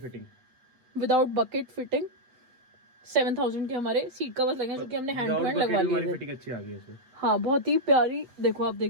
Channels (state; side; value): late; left; 8.2 ms